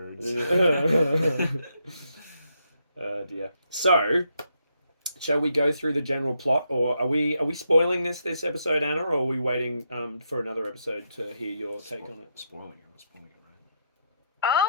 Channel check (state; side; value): inverted; both; correlation -0.79